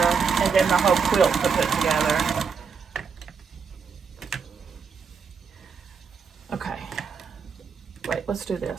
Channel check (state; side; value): quieter; left; 5.8 dB